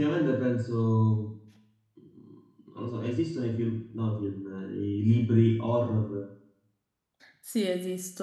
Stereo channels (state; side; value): identical; both; correlation 1.00